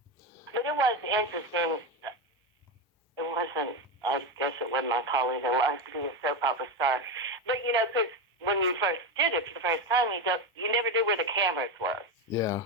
But it was interesting. It wasn't, I guess it wasn't my calling in life to be a soap opera star. But, you know, because when you first did it for the first time, you never knew where the cameras were. Yeah.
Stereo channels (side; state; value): both; normal; correlation 0.14